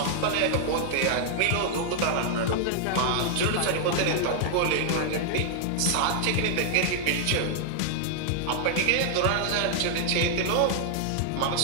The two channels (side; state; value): both; different; correlation -0.01